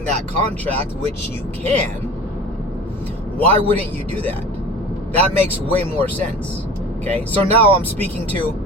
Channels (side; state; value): both; normal; correlation 0.38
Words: that contract, which you can, why wouldn't you do that? That makes way more sense. Okay, so now I'm speaking